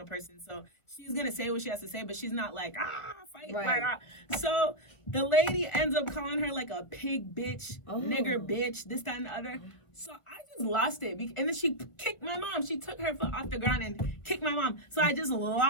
person, so she's gonna say what she has to say, but she's not like, fight, like, So the lady ends up calling her like a pig bitch, nigger bitch, this, that, and the other. So I just lost it, and then she kicked my mom. She took her foot off the ground and kicked my mom. So I just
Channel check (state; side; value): late; right; 1.2 ms